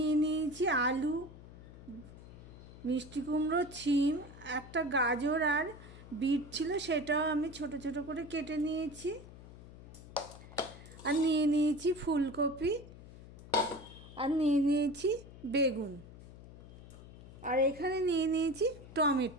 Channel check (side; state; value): left; noise; hum, 17 dB below the sound